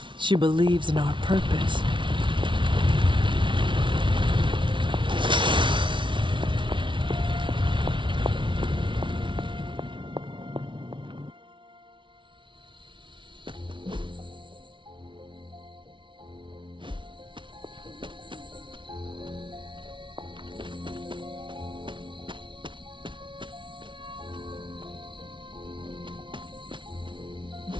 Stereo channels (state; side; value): late; left; 0.24 ms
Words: She believes in our purpose.